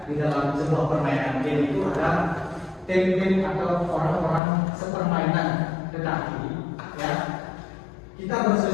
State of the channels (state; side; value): drops out; right; at 4.4 s